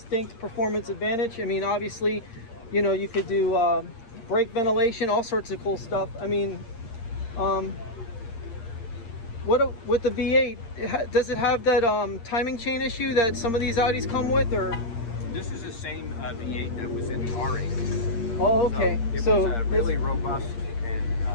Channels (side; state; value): right; late; 8.6 ms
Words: performance advantage. I mean, obviously, you know, you could do brake ventilation, all sorts of cool stuff. I mean, with the V8, does it have that timing chain issue that some of these Audis come with, or? This is the same V8 that was in the R8. Oh, okay. So it was really robust and